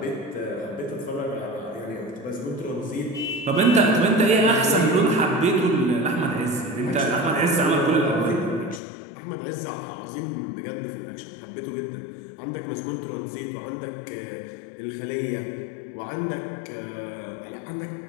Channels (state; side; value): drops out; right; at 8.8 s